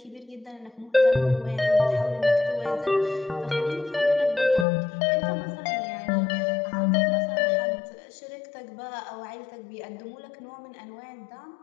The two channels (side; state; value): right; drops out; at 4.7 s